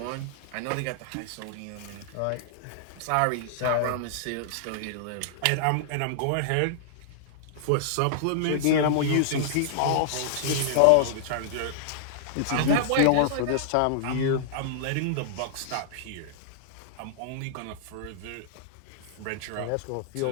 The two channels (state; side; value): different; both; correlation -0.01